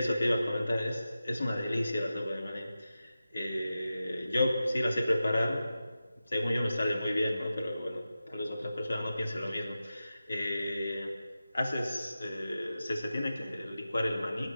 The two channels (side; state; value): both; inverted; correlation -0.93